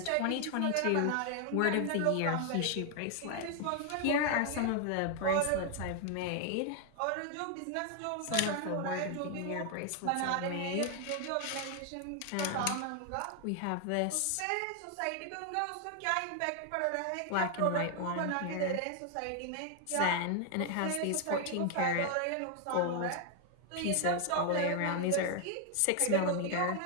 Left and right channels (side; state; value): both; different; correlation 0.00